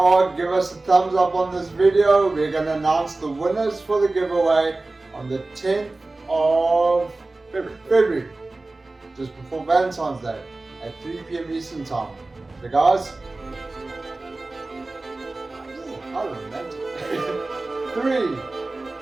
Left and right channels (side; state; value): left; quieter; 3.1 dB